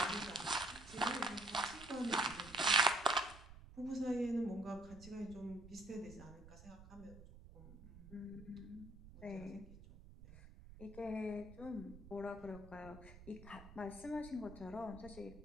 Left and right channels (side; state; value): right; noise; rumble, 17 dB below the sound